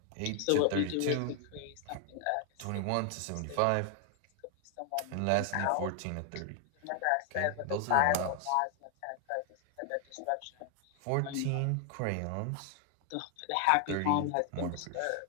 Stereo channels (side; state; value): both; different; correlation 0.00